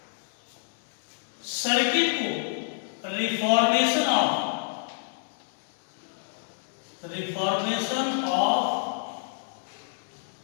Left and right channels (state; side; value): silent; right; digital silence